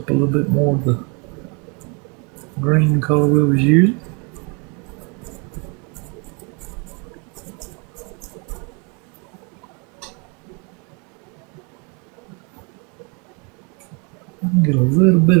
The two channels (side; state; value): left; quieter; 34.0 dB